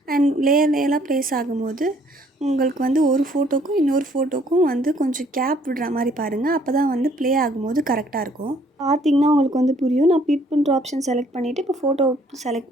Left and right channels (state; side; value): normal; both; correlation 0.62